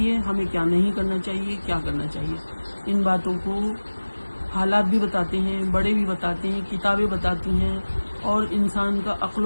ہمیں کیا نہیں کرنا چاہیے، کیا کرنا چاہیے. ان باتوں کو حالات بھی بتاتے ہیں، بڑے بھی بتاتے ہیں، کتابیں بتاتی ہیں، اور انسان کا عقل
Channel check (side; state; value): both; inverted; correlation -1.00